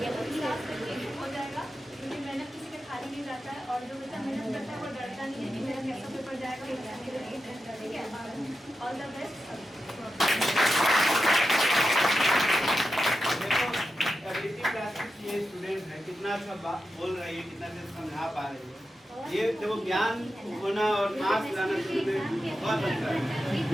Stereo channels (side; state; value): both; normal; correlation 0.90